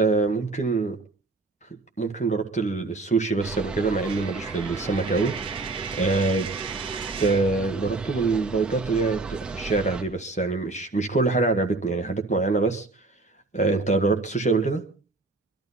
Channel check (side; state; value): left; quieter; 3.3 dB